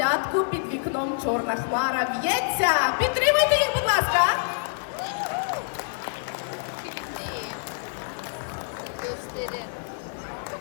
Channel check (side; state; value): right; silent; digital silence